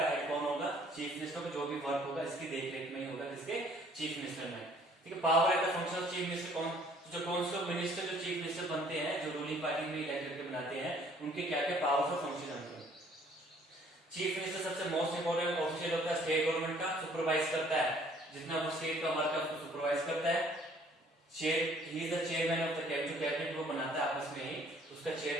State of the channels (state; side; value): normal; both; correlation 0.59